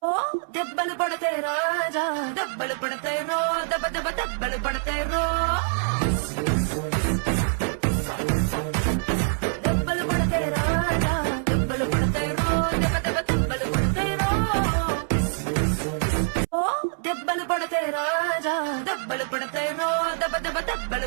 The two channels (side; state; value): left; silent; 62 dB below the other